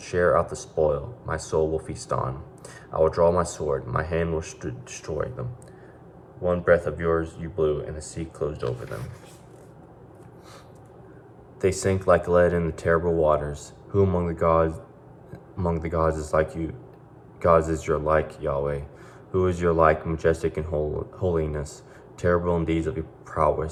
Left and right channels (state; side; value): identical; both; correlation 1.00